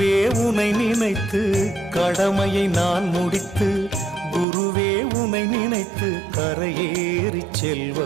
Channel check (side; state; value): left; drops out; at 4.5 s